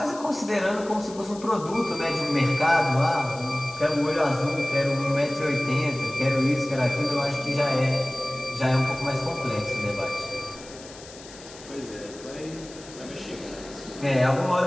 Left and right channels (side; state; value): left; noise; hiss, 18 dB below the sound